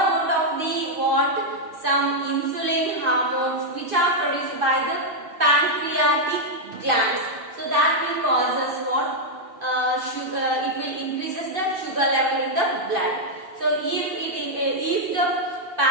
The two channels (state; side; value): late; left; 2.5 ms